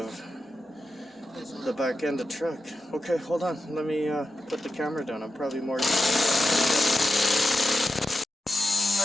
the back end of the truck. Okay, hold on. Let me put the camera down. I'm probably more...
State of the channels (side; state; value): both; normal; correlation 0.90